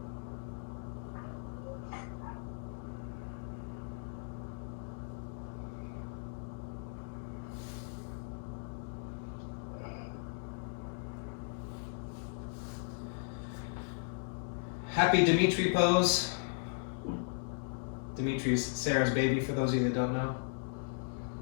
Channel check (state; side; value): silent; right; digital silence